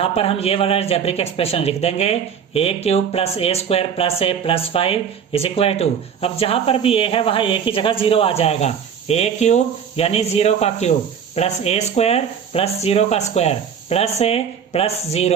पर हम ये वाला अलजेब्रिक एक्सप्रेशन लिख देंगे, a³ plus a square plus a plus 5 is equal to, अब जहां पर भी a है वहां a की जगह 0 आ जाएगा, a³ यानी 0 का cube plus a square plus 0 का square plus a plus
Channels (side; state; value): left; quieter; 7.6 dB